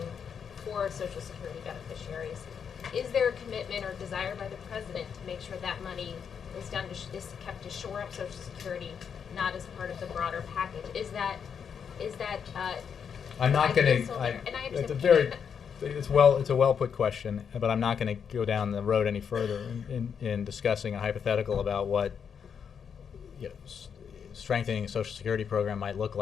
for Social Security beneficiaries, is there a commitment or desire by the president to make sure that money is kept to shore up Social Security, not as part of the broader package? Is that I'm not going to. It's a well put question, but I'm not going to go down the road any further in discussing a hypothetical about what strengthening a Social Security program might look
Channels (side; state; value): right; quieter; 7.1 dB